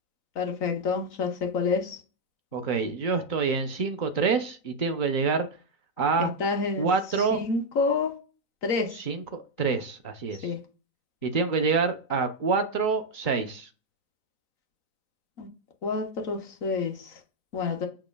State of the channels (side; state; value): right; late; 4.0 ms